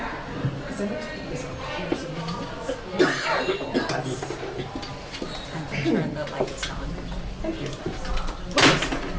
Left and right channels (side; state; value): both; identical; correlation 1.00